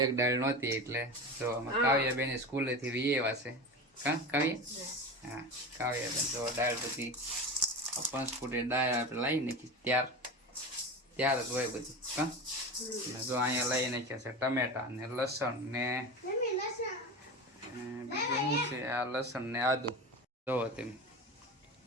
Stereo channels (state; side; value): normal; both; correlation 0.27